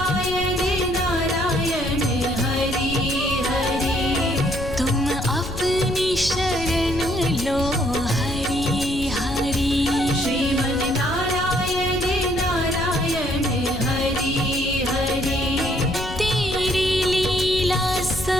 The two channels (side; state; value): left; noise; rumble, 9 dB below the sound